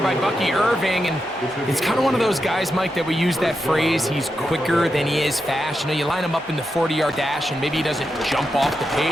Bucky Irving, and it's kind of one of those guys, Mike, that we use that phrase, he's quicker than he is fast. You know, you line him up in the 40-yard dash, and maybe he doesn't jump off the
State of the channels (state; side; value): normal; both; correlation 0.87